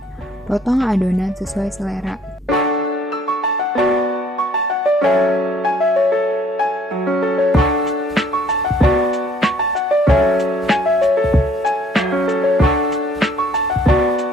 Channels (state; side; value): normal; both; correlation 0.60